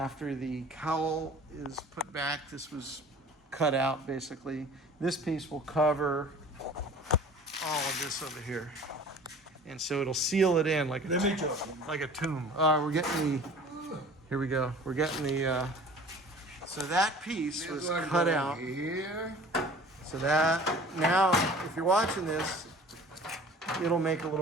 the cowl is put back. This was cut out basically. This piece will cover all of this over here, and so it'll seal it in like a tomb. We're getting the. Here we go. We're getting the. So that piece was cut out. Here. So that, now, if you're watching this, it'll make a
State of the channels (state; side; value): normal; both; correlation 0.45